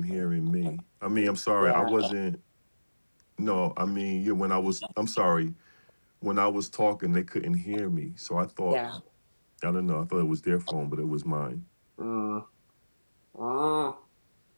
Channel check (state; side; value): inverted; both; correlation -1.00